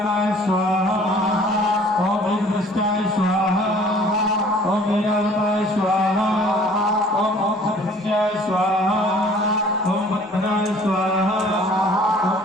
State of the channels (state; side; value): normal; both; correlation 0.53